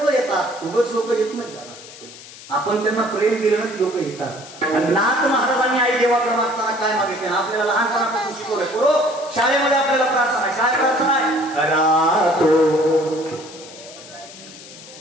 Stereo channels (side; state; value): left; noise; hiss, 17 dB below the sound